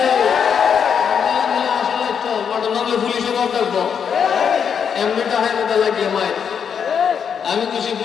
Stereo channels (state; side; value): quieter; right; 7.3 dB